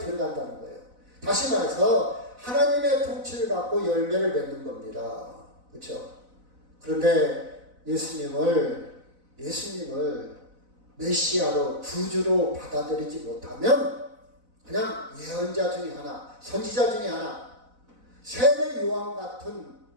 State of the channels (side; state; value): left; late; 4.0 ms